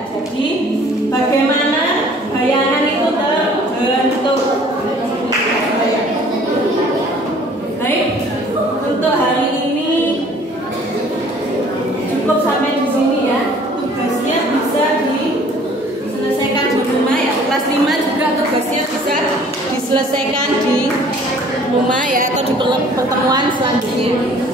Jadi bagaimana bayangan itu terbentuk? Baik, untuk hari ini cukup sampai di sini ya. Tugasnya bisa diselesaikan di rumah ya. Kelas 5 juga tugasnya bisa diselesaikan di rumah ya, atau di pertemuan selanjutnya.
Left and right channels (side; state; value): both; normal; correlation 0.54